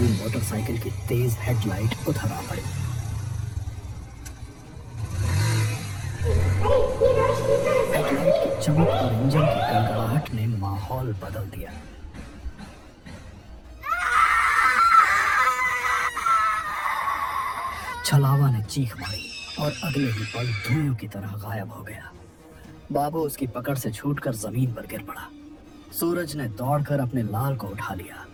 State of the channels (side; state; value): both; identical; correlation 1.00